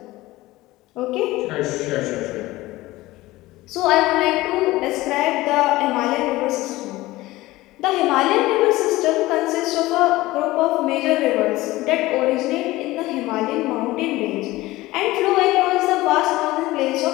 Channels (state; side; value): quieter; right; 18.4 dB